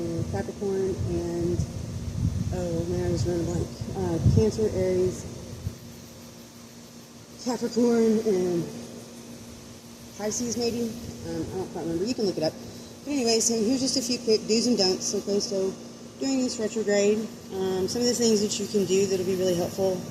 Capricorn, and oh man, I was running blank. Cancer, Aries, Capricorn, and Pisces maybe. I don't quite remember. You can look it up. But anyways, so here's just a few quick do's and don'ts. Okay, so during this retrograde, some of the things that you can do that'll be really helpful,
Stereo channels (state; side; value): identical; both; correlation 1.00